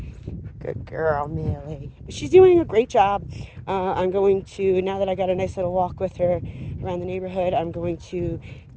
Good girl, Millie. She's doing a great job. I'm going to, now that I got a nice little walk with her around the neighborhood, I'm going to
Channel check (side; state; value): both; identical; correlation 1.00